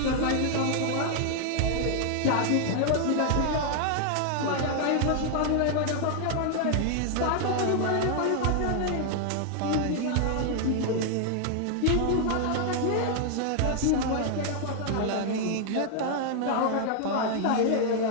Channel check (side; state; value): both; different; correlation 0.00